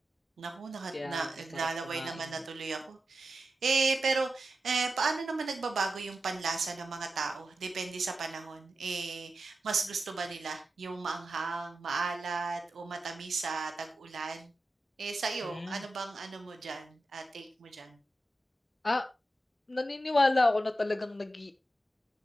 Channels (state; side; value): normal; both; correlation 0.91